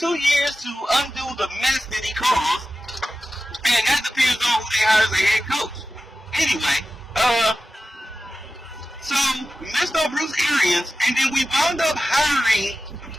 years to undo the mess that he caused, and that depends on who they hire as a head coach. Anyway, so we missed on Bruce Arians, and then we wound up hiring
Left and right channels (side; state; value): both; normal; correlation 0.94